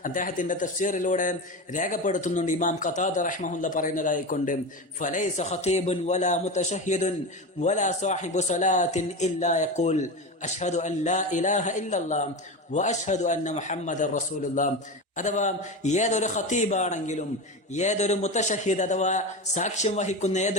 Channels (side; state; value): both; normal; correlation 0.22